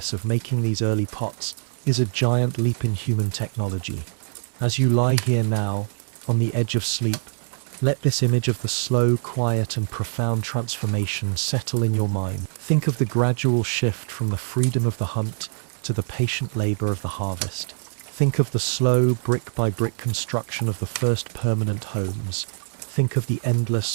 of making these early pots is a giant leap in human technology. As you lie here now, on the edge of sleep, let this image of the slow, quiet, and profound transformation settle in your mind. Think of the gradual shift from the freedom of the hunt to the patient labor of the harvest. Think of the slow, brick-by-brick construction of the first permanent homes. Think of the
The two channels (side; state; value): left; silent; digital silence